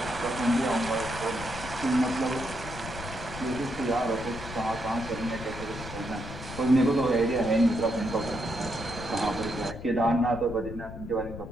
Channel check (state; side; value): noise; left; rumble, 10 dB below the sound